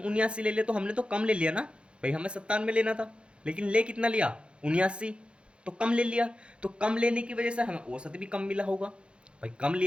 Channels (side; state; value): left; late; 0.057 ms